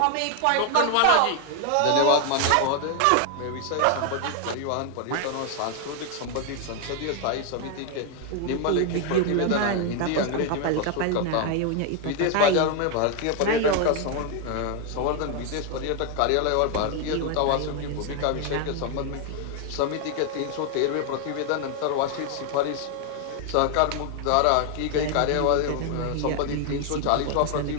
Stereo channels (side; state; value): both; different; correlation 0.00